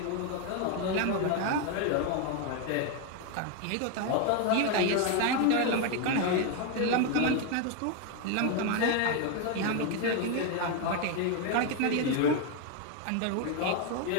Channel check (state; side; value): different; both; correlation 0.01